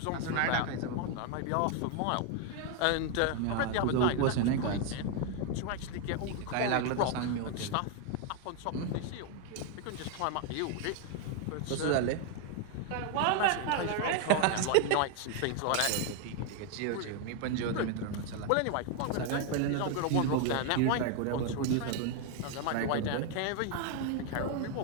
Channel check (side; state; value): both; different; correlation 0.01